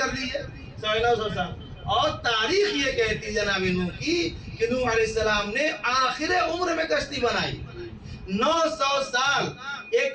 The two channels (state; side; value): identical; both; correlation 1.00